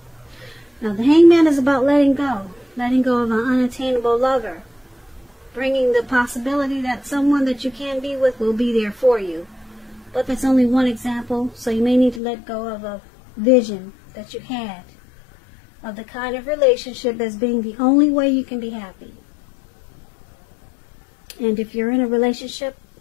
Now the Hangman is about letting go of an unattainable lover, bringing the possibility that someone that you can be with will be there for you. But that's only one example, so you may need to let go of a vision that you had of the kind of relationship as being the only way you can be happy. And if you're in a relationship,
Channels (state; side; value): drops out; right; at 12.2 s